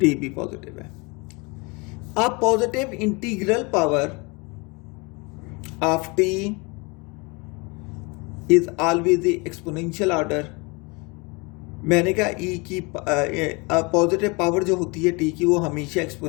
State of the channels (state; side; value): quieter; right; 28.4 dB